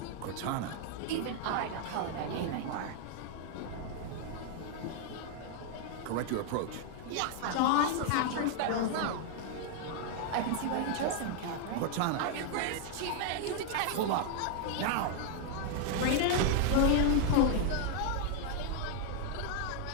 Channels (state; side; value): different; both; correlation 0.00